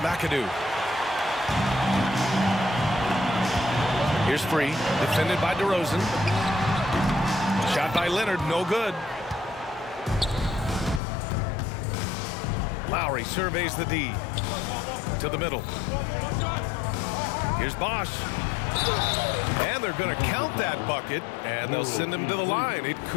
Here's Free, defended by DeRozan. Shot by Leonard, no good. Lowry surveys the D. To the middle. Here's Bosch. And they're going to count that bucket, and they'll send him to the line. It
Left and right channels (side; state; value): right; drops out; at 11.0 s